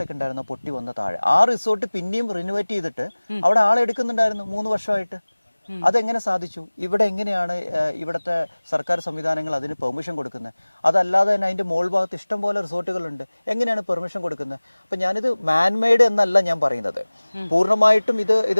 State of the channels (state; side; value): inverted; both; correlation -1.00